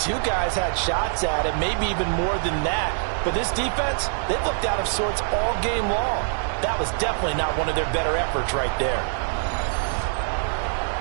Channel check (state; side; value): silent; left; 62 dB below the other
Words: guys had shots at it, maybe even more than that. But this defense, they've looked out of sorts all game long. That was definitely not one of their better efforts right there.